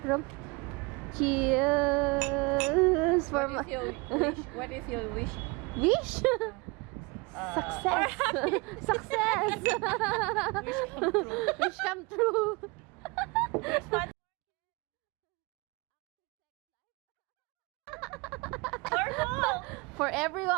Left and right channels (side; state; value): left; quieter; 27.5 dB